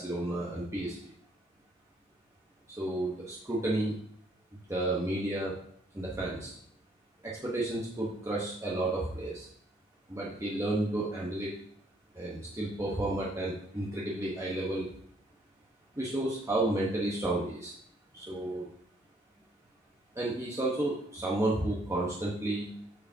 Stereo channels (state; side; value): normal; both; correlation 0.66